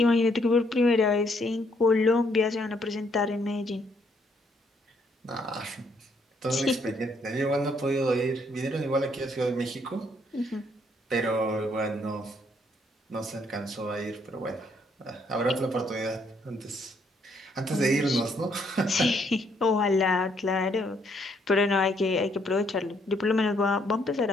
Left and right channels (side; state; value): both; normal; correlation 0.70